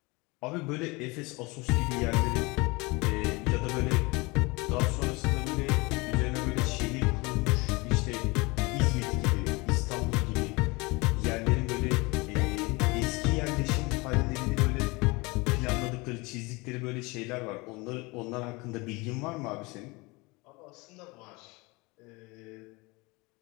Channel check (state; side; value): quieter; right; 25.2 dB